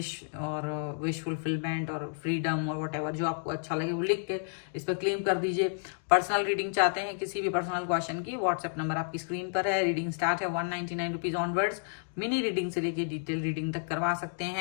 और विश फुलफिलमेंट और फ्रीडम और व्हाटएवर जो आपको अच्छा लगे वो लिख के इस पर क्लेम कर दीजिए। पर्सनल रीडिंग चाहते हैं किसी भी पर्सनल क्वेश्चन की, व्हाट्सएप नंबर आपकी स्क्रीन पर है। रीडिंग स्टार्ट है 199 रुपीज ऑनवर्ड्स। मिनी रीडिंग से लेके डिटेल रीडिंग तक करवा सकते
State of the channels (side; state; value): right; silent; digital silence